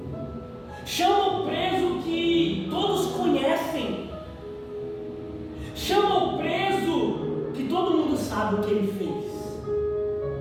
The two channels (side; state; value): both; identical; correlation 1.00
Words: Chama o preso que todos conhecem. Chama o preso que todo mundo sabe o que ele fez.